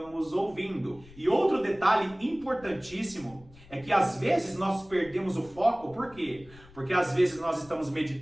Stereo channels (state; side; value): noise; left; rumble, 23 dB below the sound